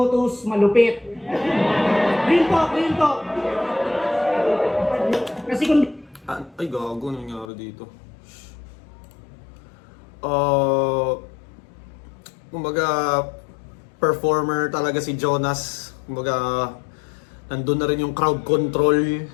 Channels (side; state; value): right; drops out; at 7.5 s